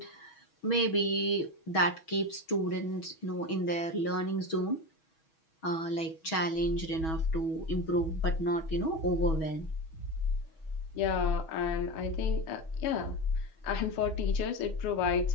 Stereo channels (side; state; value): right; late; 6.2 ms